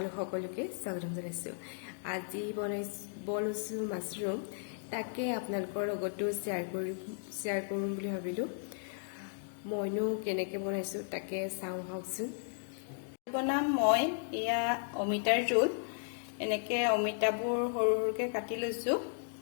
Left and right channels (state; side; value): silent; right; digital silence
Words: সকলোকে স্বাগতম জনাইছোঁ। আজি বনাইছোঁ মাছৰুম, তাকে আপোনালোকৰ লগতো শ্বেয়াৰ কৰিম বুলি ভাবিলোঁ। মইনো কেনেকৈ বনাইছোঁ তাকে চাওঁ আহকচোন। বনাম মই এয়া অমিতাৰ জোল। এনেকৈ অমিতাবোৰ সৰু সৰুকৈ কাটি লৈছোঁ।